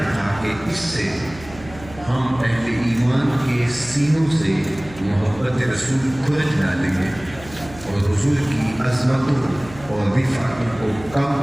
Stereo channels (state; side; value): noise; right; hum, 18 dB below the sound